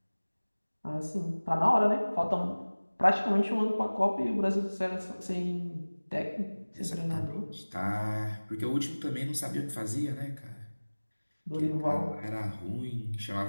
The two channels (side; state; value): both; inverted; correlation -1.00